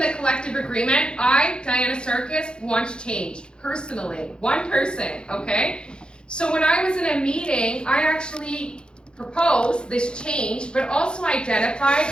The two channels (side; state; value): right; late; 0.050 ms